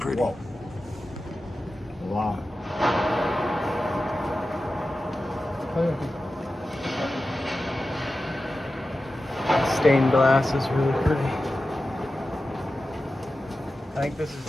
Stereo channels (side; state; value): both; normal; correlation 0.93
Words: Whoa. Wow. Stained glass is really pretty. I think this is